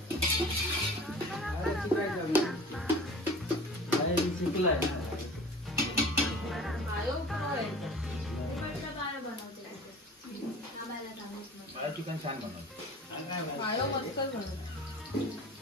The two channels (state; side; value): normal; both; correlation 0.42